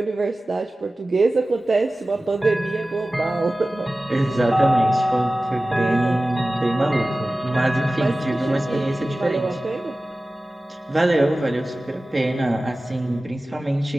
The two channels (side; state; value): both; normal; correlation 0.96